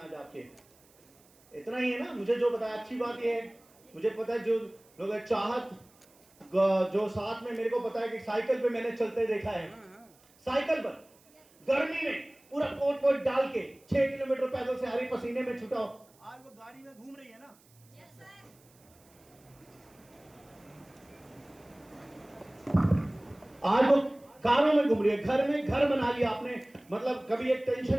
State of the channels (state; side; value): noise; right; hiss, 30 dB below the sound